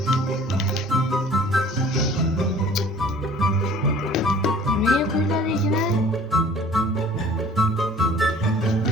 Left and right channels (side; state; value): both; normal; correlation 0.50